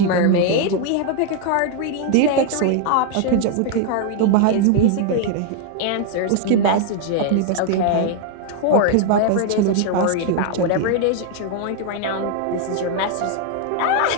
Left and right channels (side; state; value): both; different; correlation 0.00